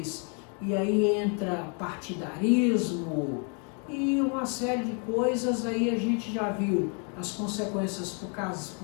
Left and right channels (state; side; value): quieter; right; 38.6 dB